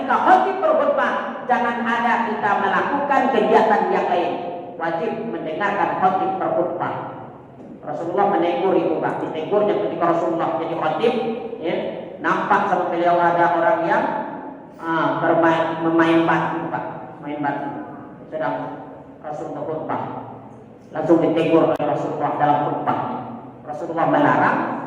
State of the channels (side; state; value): both; identical; correlation 1.00